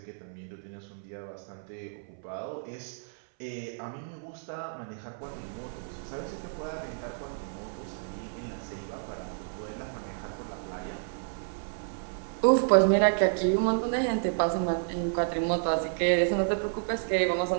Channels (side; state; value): left; silent; 57 dB below the other